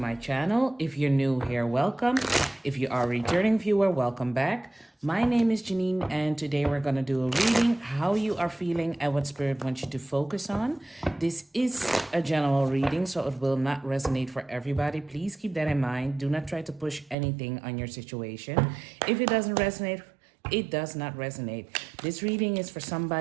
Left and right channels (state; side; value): drops out; left; at 17.2 s